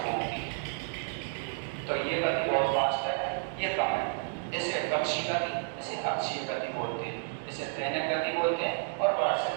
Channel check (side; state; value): left; silent; 57 dB below the other